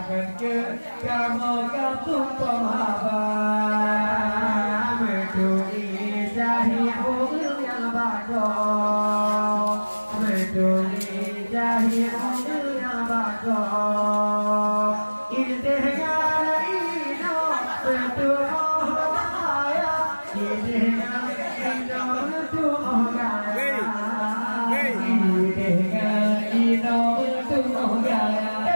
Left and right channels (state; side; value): inverted; both; correlation -1.00